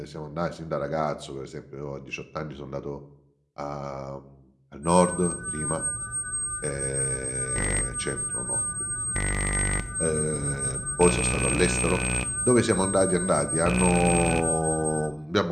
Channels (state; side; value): identical; both; correlation 1.00